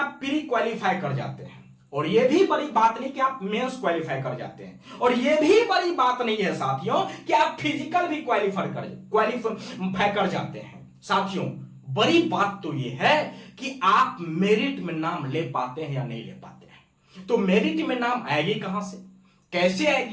प्री क्वालिफाई कर जाते हैं, और यह भी बड़ी बात नहीं कि आप मेंस क्वालिफाई कर जाते हैं, और यह भी बड़ी बात नहीं है साथियों कि आप फिजिकल भी क्वालिफाई कर जाते हैं। साथियों बड़ी बात तो यह है कि आप मेरिट में नाम ले पाते हैं या नहीं ले पाते हैं। तो मेरिट में नाम आएगी कहां से, कैसे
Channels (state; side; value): identical; both; correlation 1.00